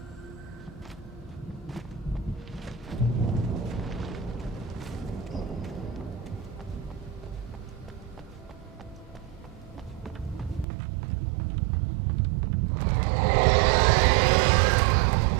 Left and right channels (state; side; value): drops out; left; at 10.7 s